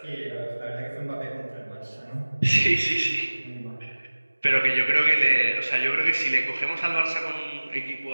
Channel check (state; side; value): inverted; both; correlation -1.00